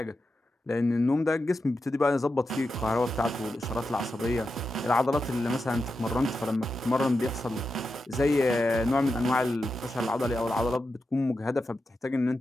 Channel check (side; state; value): both; normal; correlation 0.89